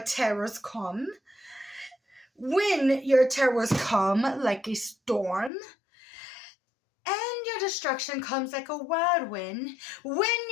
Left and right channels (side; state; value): right; drops out; at 5.5 s